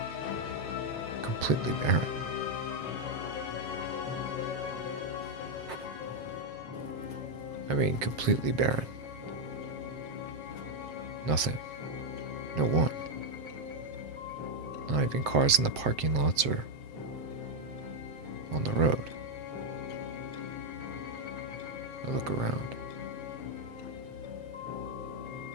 completely barren. I mean, completely barren. Nothing. No one. Not even cars in the parking lots or on the road. I look around.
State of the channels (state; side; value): late; left; 7.5 ms